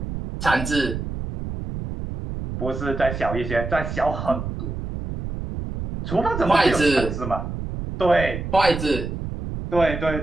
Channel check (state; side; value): noise; right; rumble, 6 dB below the sound